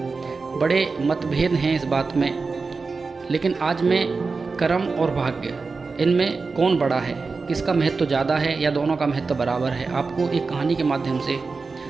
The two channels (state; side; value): quieter; left; 4.3 dB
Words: बड़े मतभेद हैं इस बात में। लेकिन आज मैं कर्म और भाग्य, इनमें कौन बड़ा है, किसका महत्व ज़्यादा है या दोनों का महत्व बराबर है, आपको एक कहानी के माध्यम से